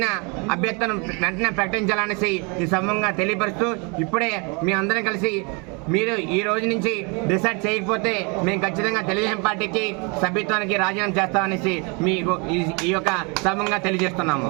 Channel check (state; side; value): quieter; left; 31.5 dB